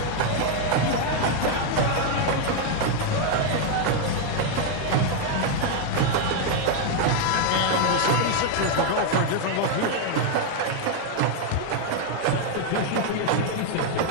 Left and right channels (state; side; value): different; both; correlation 0.00